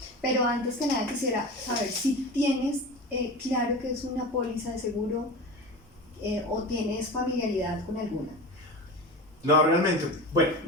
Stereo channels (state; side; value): normal; both; correlation 0.30